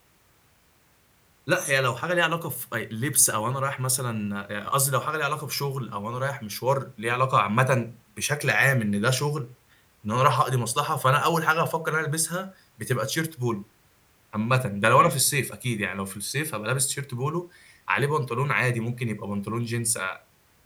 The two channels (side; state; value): both; identical; correlation 1.00